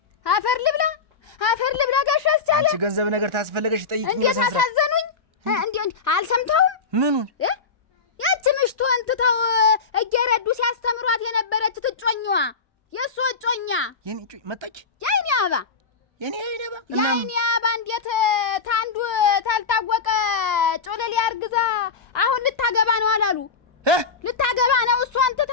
አፈር ልብላ ጋሽ አስቻለ። አንቺ ገንዘብ ነገር ታስፈልገሽ ጠይቂኝ። እንዴት አሳዘኑኝ! እንዴ አልሰምተውም? ምኑን? ያቺ ምሽቱ እንትተው እየረዱ ሲያስተምሯት የነበረች ትጮኛዋ የእሱ እጮኛ የኔ እጮኛ መጣች። የኔ አባ የኔ አባ እንዴት ታንዱ ታልታወቀ ጮለሌ አርግዛ አሁን ልታገባ ነው አላሉ? ልታገባ ነው እሷን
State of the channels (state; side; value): quieter; right; 5.0 dB